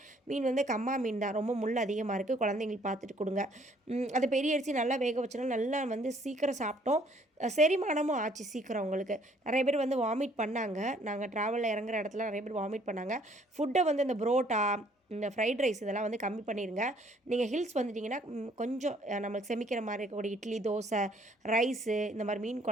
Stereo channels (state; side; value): normal; both; correlation 0.62